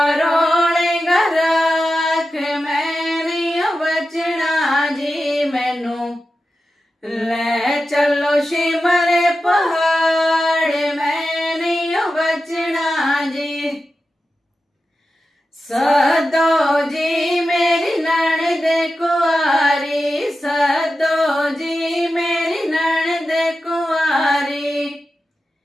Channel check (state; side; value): normal; both; correlation 0.92